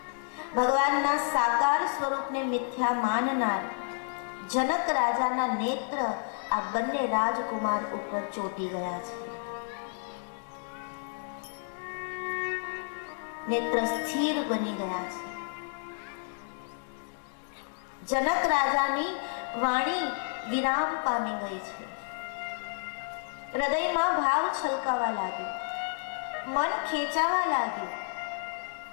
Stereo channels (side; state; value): right; silent; 57 dB below the other